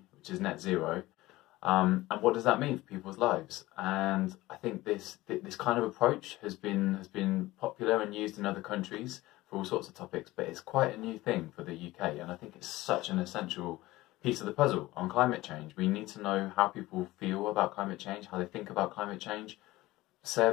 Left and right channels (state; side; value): quieter; right; 18.3 dB